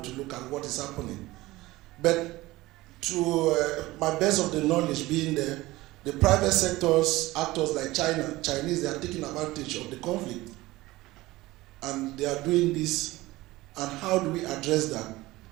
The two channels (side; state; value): left; quieter; 18.9 dB